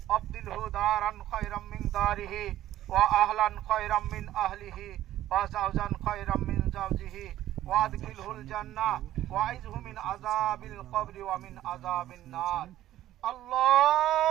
أبدله دارا خيرا من داره وأهلا خيرا من أهله وزوجا خيرا من زوجه وأدخله الجنة وأعذه من عذاب القبر ومن عذاب النار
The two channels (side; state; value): left; quieter; 13.5 dB